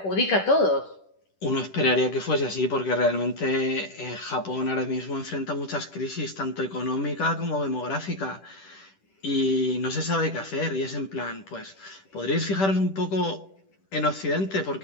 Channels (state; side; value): late; right; 10 ms